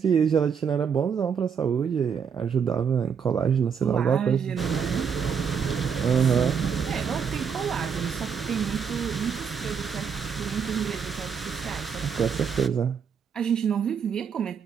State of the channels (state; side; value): quieter; left; 6.9 dB